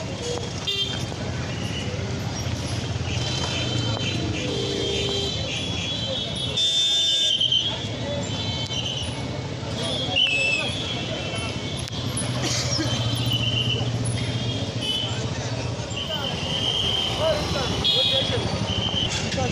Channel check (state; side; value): identical; both; correlation 1.00